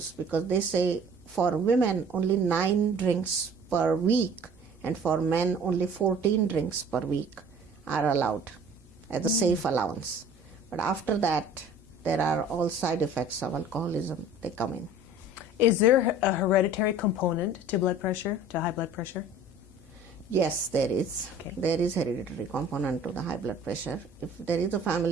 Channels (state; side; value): normal; both; correlation 0.47